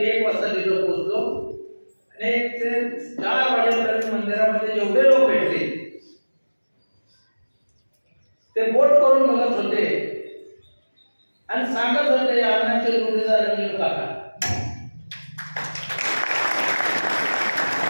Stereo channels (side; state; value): both; inverted; correlation -1.00